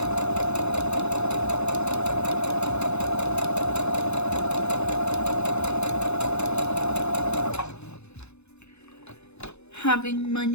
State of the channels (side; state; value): right; late; 0.81 ms